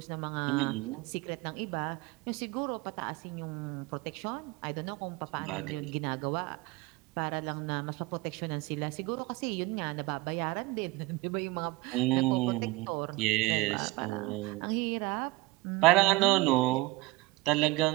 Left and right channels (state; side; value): quieter; left; 21.1 dB